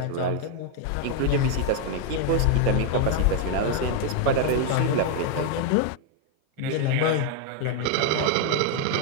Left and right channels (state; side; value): different; both; correlation 0.01